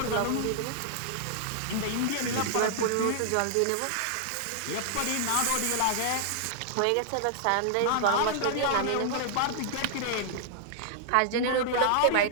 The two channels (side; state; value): both; different; correlation -0.01